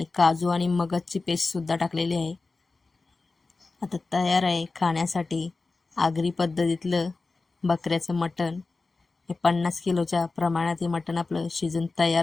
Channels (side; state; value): right; quieter; 3.8 dB